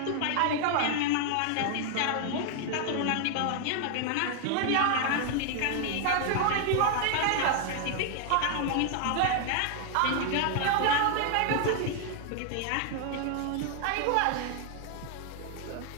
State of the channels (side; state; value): both; different; correlation 0.00